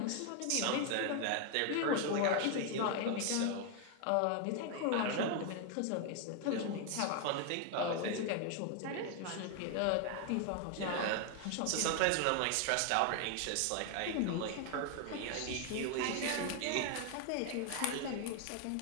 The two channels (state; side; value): different; both; correlation 0.00